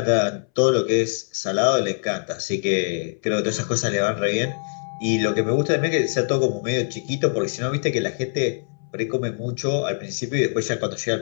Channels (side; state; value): right; silent; 63 dB below the other